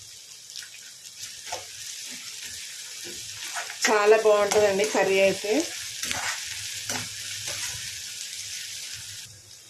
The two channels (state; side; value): identical; both; correlation 1.00